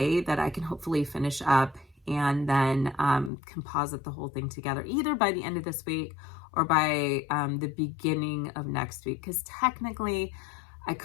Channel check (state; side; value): drops out; right; at 3.3 s